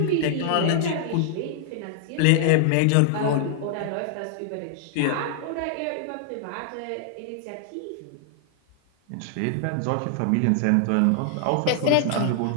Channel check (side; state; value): both; different; correlation 0.00